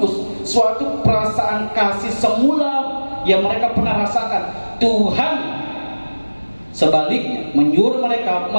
suatu perasaan kasih semula yang mereka pernah rasakan. Tuhan Sebaliknya, menyuruh mereka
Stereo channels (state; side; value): inverted; both; correlation -1.00